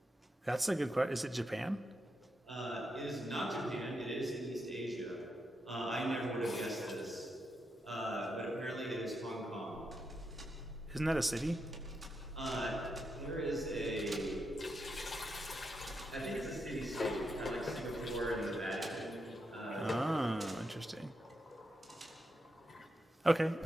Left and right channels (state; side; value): normal; both; correlation 0.84